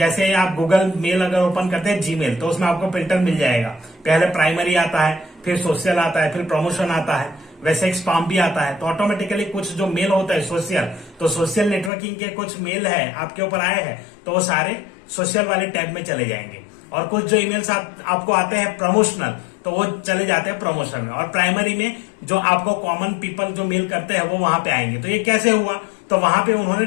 आप गूगल मेल अगर ओपन करते हैं जीमेल तो उसमें आपको फिल्टर मिल जाएगा। पहले प्राइमरी आता है, फिर सोशल आता है, फिर प्रमोशन आता है। वैसे एक स्पैम भी आता है। तो ऑटोमेटिकली कुछ जो मेल होता है सोशल, तो सोशल नेटवर्किंग के कुछ मेल है आपके ऊपर आए हैं तो वो सारे सोशल वाले टैब में चले जाएंगे। और कुछ जो ईमेल्स आपको आते हैं प्रमोशनल, तो वो चले जाते हैं प्रमोशन में। और प्राइमरी में जो आपको कॉमन पीपल जो मेल करते हैं वो वहां पे आएंगे। तो ये कैसे हुआ, तो वहां पे उन्होंने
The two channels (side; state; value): right; drops out; at 11.9 s